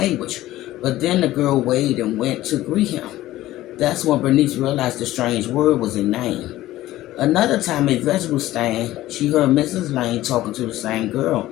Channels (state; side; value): quieter; right; 15.5 dB